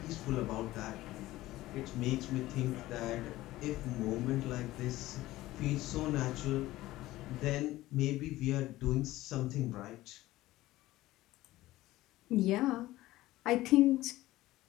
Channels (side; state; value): right; quieter; 16.8 dB